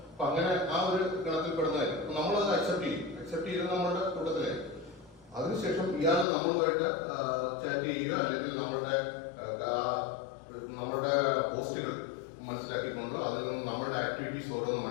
അപ്പൊ അങ്ങനെ ആ ഒരു ഗണത്തിൽ പെടുന്നതായിരിക്കും. നമ്മളത് അക്സെപ്റ്റ് ചെയ്ത് നമ്മുടെ കൂട്ടത്തിലായി. അതിനുശേഷം ഇയാൾ നമ്മളുമായിട്ട് ചാറ്റ് ചെയ്യുക, അല്ലെങ്കിൽ നമ്മുടെ പോസ്റ്റുകൾ മനസ്സിലാക്കിക്കൊണ്ട് അതിൽ നിന്ന് നമ്മുടെ ആക്ടിവിറ്റീസ് ഓരോന്ന്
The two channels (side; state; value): right; drops out; at 6.2 s